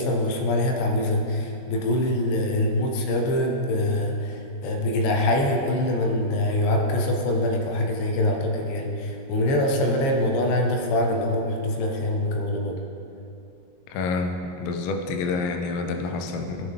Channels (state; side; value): late; right; 22 ms